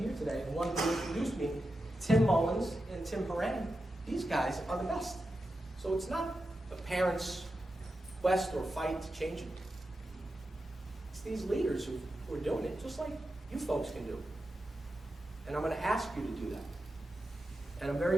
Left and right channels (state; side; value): normal; both; correlation 0.90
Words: today. And one who introduced me, Tim Mullins and Tim Horan. These guys are the best. So it's not a parent's quest or fight to change it. It's these leaders who are doing it, just like you folks can do. And I'm going to ask you to do that. And I'm